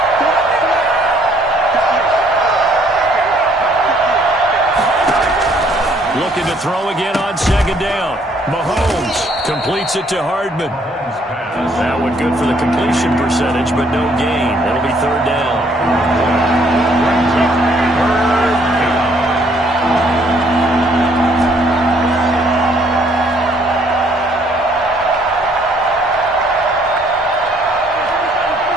Looking to throw again on second down. Mahomes completes it to Hardman. That one good for the completion percentage, but no gain. That'll be third down.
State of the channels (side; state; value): both; normal; correlation 0.65